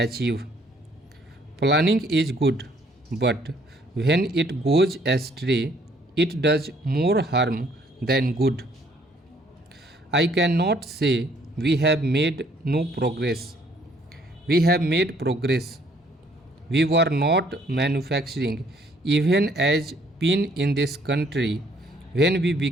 Planning is good, but when it goes astray, it does more harm than good. I cannot say we have made no progress. We have made progress. We were not manufacturing even as pin in this country when we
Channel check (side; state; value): both; normal; correlation 0.63